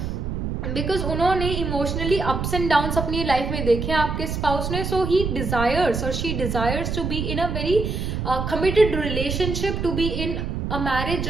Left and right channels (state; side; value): noise; right; rumble, 3 dB below the sound